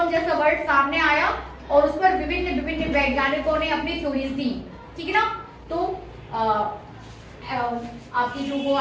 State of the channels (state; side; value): identical; both; correlation 1.00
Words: जैसा वर्ड सामने आया और उस पर विभिन्न विभिन्न वैज्ञानिकों ने अपनी थ्योरीज दी, ठीक है ना। तो आपकी जो वो